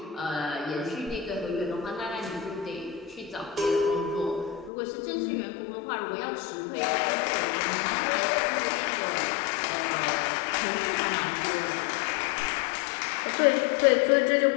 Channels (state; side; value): drops out; right; at 4.7 s